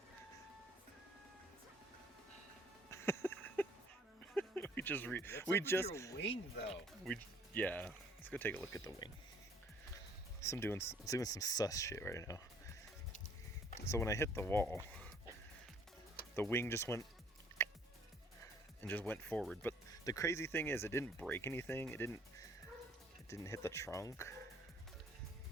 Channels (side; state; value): both; normal; correlation 0.59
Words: Your wing though. Yeah. Let's go take a look at the wing. I'm doing some sus shit right now. So when I hit the wall, the wing just went forward. But the crazy thing is, it didn't break anything. It didn't hit the trunk.